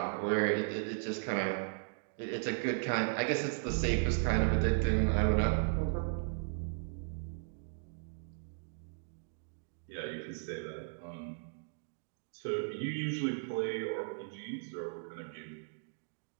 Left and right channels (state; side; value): silent; left; digital silence